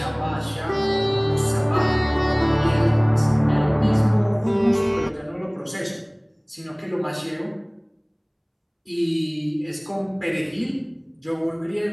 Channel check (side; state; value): both; identical; correlation 1.00